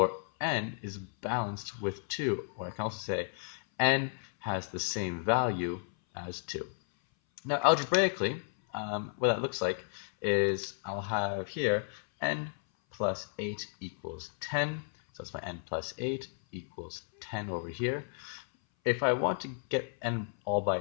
n is balanced with 2. Or I can also say n has the same value as 2. Now, algebraically, what that looks like is I'll have here n plus 8 equals 10. So that's my n plus 8 equals 10 over here. If I want to get n all by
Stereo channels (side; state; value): right; silent; 56 dB below the other